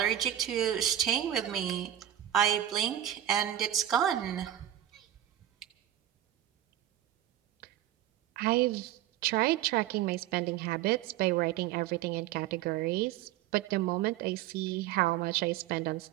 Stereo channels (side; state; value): left; quieter; 12.2 dB